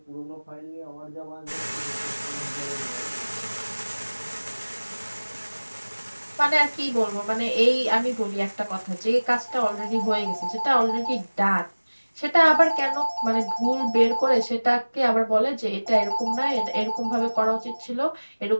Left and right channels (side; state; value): both; inverted; correlation -1.00